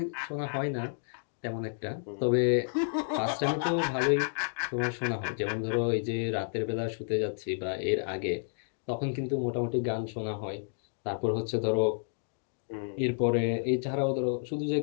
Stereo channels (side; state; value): right; silent; digital silence